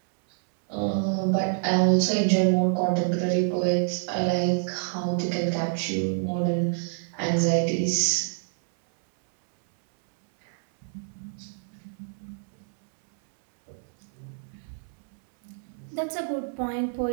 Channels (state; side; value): silent; left; 60 dB below the other